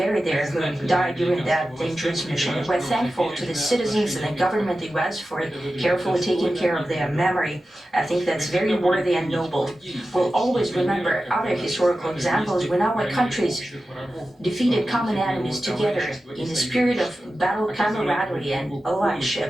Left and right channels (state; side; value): normal; both; correlation 0.93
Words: there who died during that dangerous mission. We're thankful to the citizens and the government of the US for carefully taking care of their memory. I think that's very worthy and noble. We'll always remember other historical examples when our countries defeated common enemies together in the spirit of battle camaraderie and